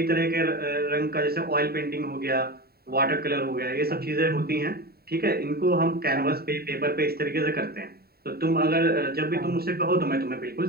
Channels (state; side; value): late; left; 0.45 ms